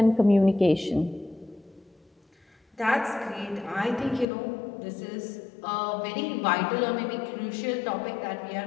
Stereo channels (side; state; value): right; drops out; at 4.2 s